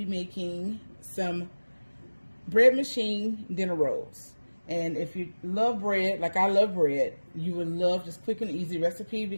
making some bread machine dinner rolls. And if you love bread, like I love bread, you would love this quick and easy recipe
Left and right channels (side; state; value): both; inverted; correlation -1.00